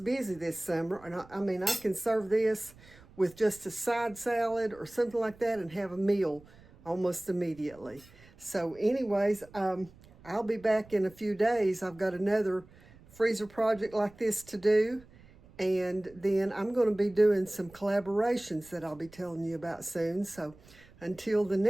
this summer. And I mean, I can serve this with just a side salad or something like that and have a meal almost immediately. So anyways, I'll be back in a few days. I've got another freezer project like this to do. And then I'm going to be doing some collaborations that I'll be telling you about soon. So until the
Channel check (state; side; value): noise; right; rumble, 24 dB below the sound